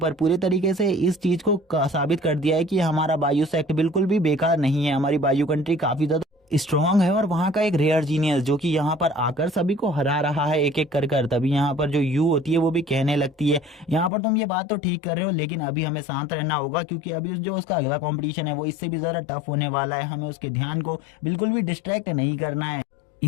पूरे तरीके से इस चीज को साबित कर दिया है कि हमारा बायू सेक्ट बिल्कुल भी बेकार नहीं है, हमारी बायू कंट्री काफी ज्यादा स्ट्रांग है और वहाँ का एक रेयर जीनियस जो कि यहाँ पर आकर सभी को हरा रहा है एक एक कर कर। तभी यहाँ पर जो यू होती है वो भी कहने लगती है यहाँ पर तुम ये बात तो ठीक कर रहे हो, लेकिन अभी हमें शांत रहना होगा, क्योंकि अभी जो उसका अगला कंपटीशन है वो इससे भी ज़्यादा टफ होने वाला है। हमें उसके ध्यान को बिल्कुल भी डिस्ट्रैक्ट नहीं करना है,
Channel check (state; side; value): drops out; right; at 14.1 s